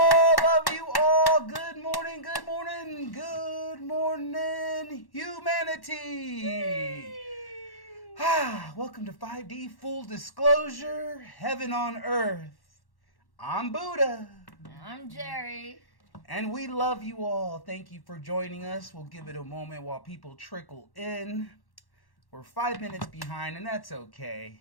Love you all. Good morning. Good morning. Good morning, humanity. Welcome to 5D Full Disclosure, Heaven on Earth. I'm Buddha. I'm Jerry. And we love you all. Thank you for joining us. We'll give it a moment while people trickle in. We're 5 minutes behind, and that's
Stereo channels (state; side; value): late; right; 1.1 ms